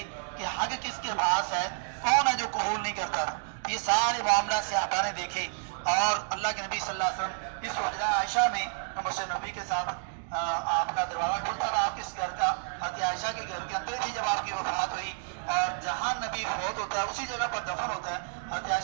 کہ حق کس کے پاس ہے، کون ہے جو قبول نہیں کرتا تھا۔ یہ سارے معاملات صحابہ نے دیکھے، اور اللہ کے نبی صلی اللہ علیہ وسلم اس حجرہ عائشہ میں مسجد نبی کے ساتھ آپ کا دروازہ کھلتا تھا، آپ کس گھر کا، حضرت عائشہ کے گھر کے اندر تھی جب آپ کی وفات ہوئی، اور جہاں نبی فوت ہوتا ہے اسی جگہ پر دفن ہوتا ہے، حضرت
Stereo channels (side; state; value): left; silent; 58 dB below the other